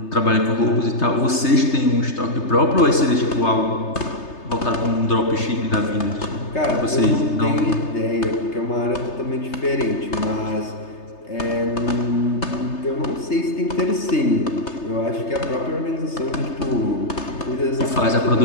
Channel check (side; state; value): right; late; 3.3 ms